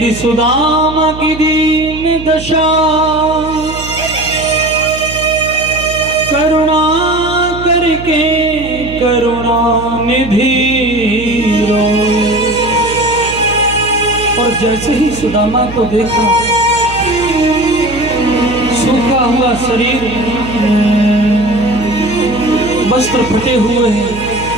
सुदामा की दीन दशा, करुणा करके करुणा निधि रोए। और जैसे ही सुदामा को देखा, सूखा हुआ शरीर, वस्त्र फटे हुए हैं,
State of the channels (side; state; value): right; noise; hum, 11 dB below the sound